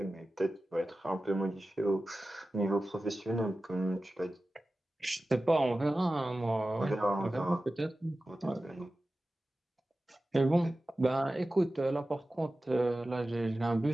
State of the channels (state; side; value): normal; both; correlation 0.95